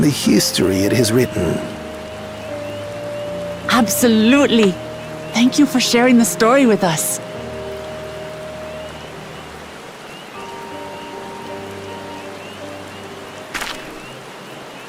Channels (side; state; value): both; identical; correlation 1.00